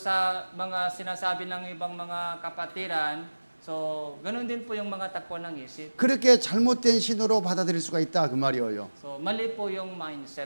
sa mga sinasabi ng ibang mga kapatiran, so ganun din po yung mga takbo ng isip. 그렇게 잘못된 신호로 받아들일 수가 있다 그 말이에요. So mali po yung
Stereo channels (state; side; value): inverted; both; correlation -1.00